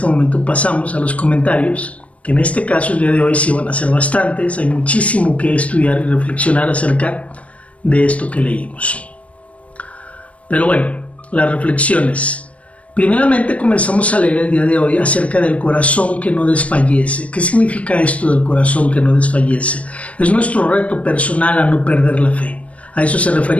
momento pasamos a los comentarios que en este caso el día de hoy sí van a ser bastantes. Hay muchísimo que estudiar y reflexionar acerca de esto que leímos. Pero bueno, las reflexiones. Primeramente comenzamos a leer el día de hoy acerca del corazón que no desfallece. ¿Qué significa esto del corazón que no desfallece? Es nuestro reto personal a no perder la fe. A eso se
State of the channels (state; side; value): late; right; 0.065 ms